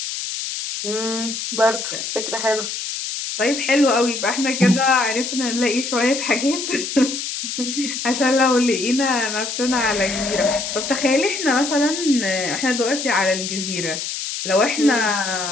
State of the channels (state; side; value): noise; left; hiss, 5 dB below the sound